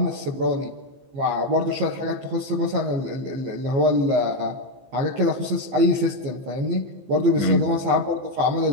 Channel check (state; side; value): late; left; 15 ms